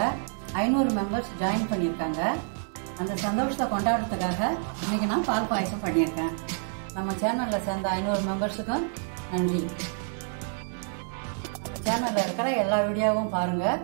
500 மெம்பர்ஸ் ஜாயின் பண்ணியிருக்காங்க. அந்த சந்தோஷத்தை கொண்டாடுறதுக்காக இன்னைக்கு நான் பால் பாயசம் பண்ணியிருக்கேன். நம்ம சேனல்ல சேர்ந்த 500 மெம்பர்ஸுக்கும் நன்றி. நம்ம சேனல்ல இருக்கிற எல்லா வீடியோவும் பாருங்க,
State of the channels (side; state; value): left; silent; 59 dB below the other